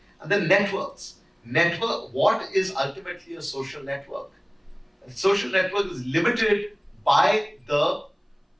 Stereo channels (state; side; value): identical; both; correlation 1.00